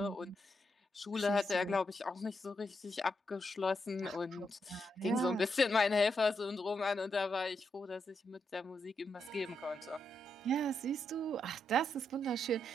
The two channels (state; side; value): normal; both; correlation 0.82